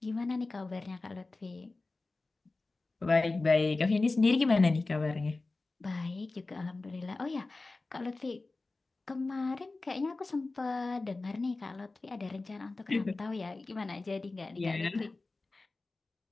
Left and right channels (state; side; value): quieter; right; 3.4 dB